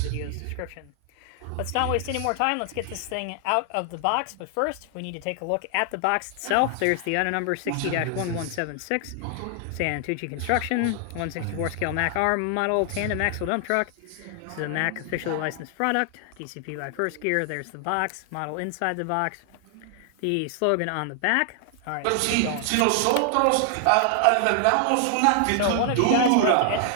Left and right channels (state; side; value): different; both; correlation 0.00